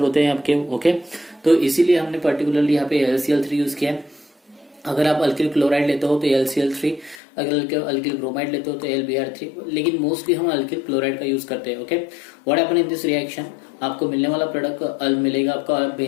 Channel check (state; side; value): drops out; right; at 7.2 s